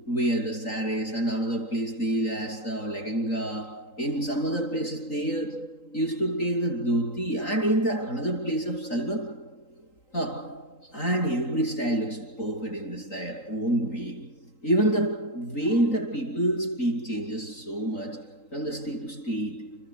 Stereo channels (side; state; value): right; late; 3.8 ms